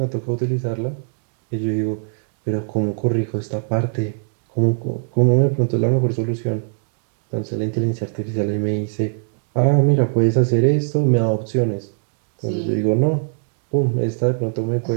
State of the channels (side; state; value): left; silent; digital silence